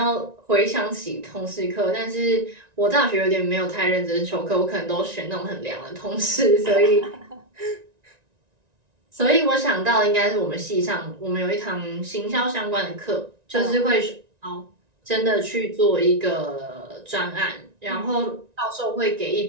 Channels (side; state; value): left; late; 1.9 ms